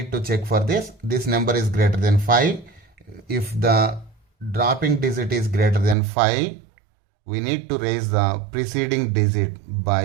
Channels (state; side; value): drops out; left; at 6.0 s